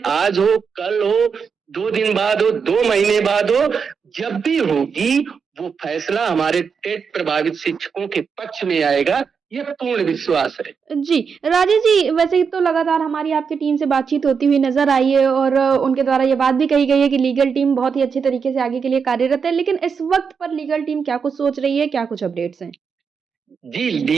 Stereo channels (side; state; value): left; quieter; 6.0 dB